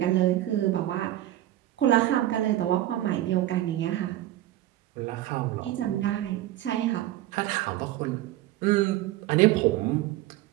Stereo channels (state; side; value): quieter; left; 14.4 dB